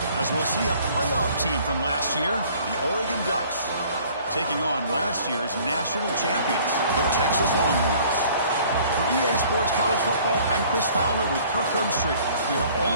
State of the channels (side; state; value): both; inverted; correlation -0.54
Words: As we'll see a playoff team from last year, the Oregon Ducks, taking on last year's national champions, the Texas Longhorns. For EA Sports College Football, I'm Chris Fowler with Kirk Herbstreit. We are